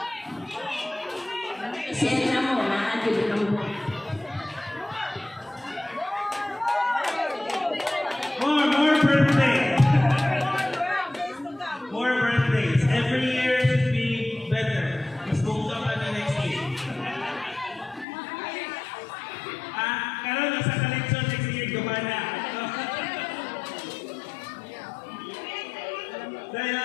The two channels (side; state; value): right; drops out; at 18.1 s